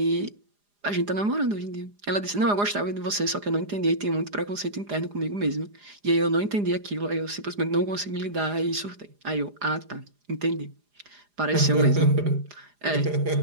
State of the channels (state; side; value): late; left; 4.9 ms